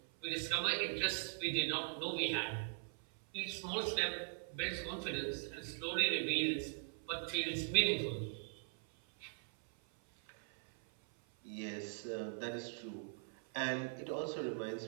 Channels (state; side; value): silent; left; 51 dB below the other